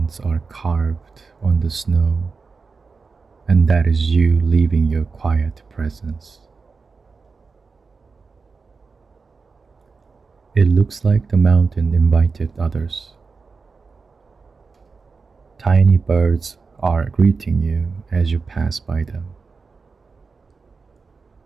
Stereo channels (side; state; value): left; quieter; 4.6 dB